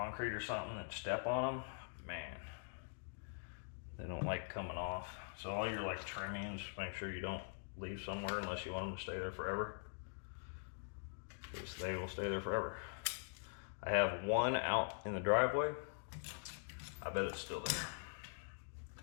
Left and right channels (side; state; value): right; silent; digital silence